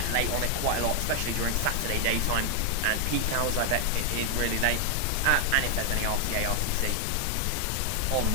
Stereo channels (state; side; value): different; both; correlation 0.00